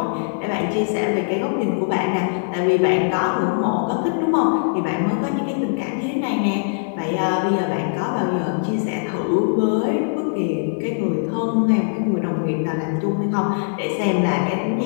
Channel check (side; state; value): right; silent; digital silence